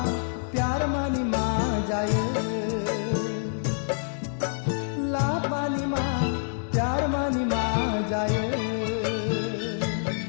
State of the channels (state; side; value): silent; right; digital silence